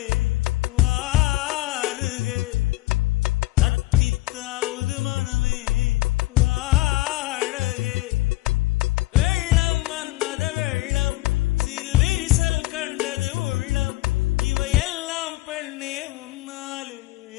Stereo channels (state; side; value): quieter; right; 19.2 dB